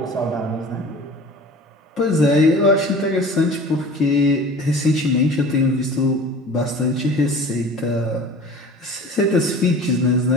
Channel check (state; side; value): normal; both; correlation 0.41